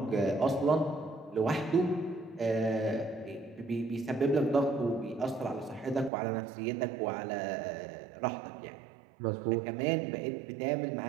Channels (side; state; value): left; drops out; at 6.1 s